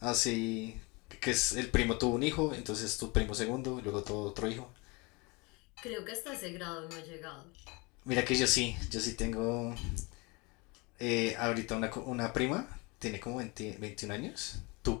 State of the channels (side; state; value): right; quieter; 27.4 dB